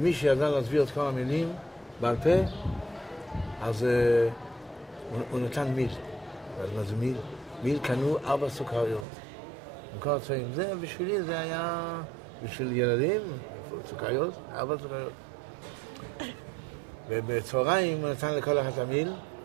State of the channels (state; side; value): drops out; left; at 9.1 s